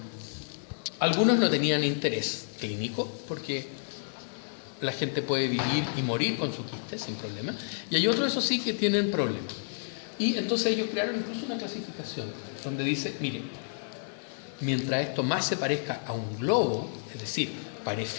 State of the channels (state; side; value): silent; right; digital silence